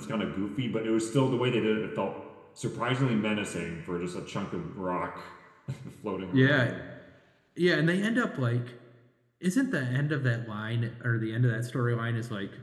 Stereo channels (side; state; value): both; identical; correlation 1.00